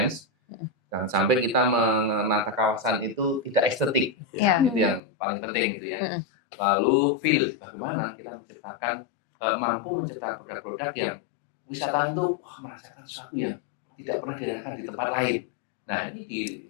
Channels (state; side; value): drops out; right; at 5.0 s